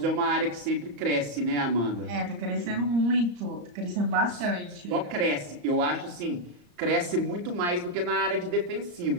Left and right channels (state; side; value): late; left; 34 ms